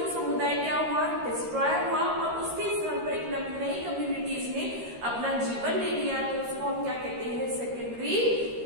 समुदाय क्या हुआ, डिस्ट्रॉय हुआ, और उसके स्थान पर एक नई कम्युनिटीज ने अपना जीवन ले लिया, तो उसको हम क्या कहते हैं, सेकेंडरी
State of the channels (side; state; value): left; late; 13 ms